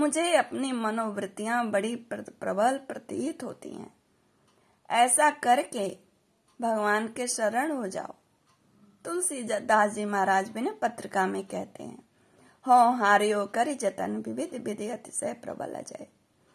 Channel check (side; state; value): both; identical; correlation 1.00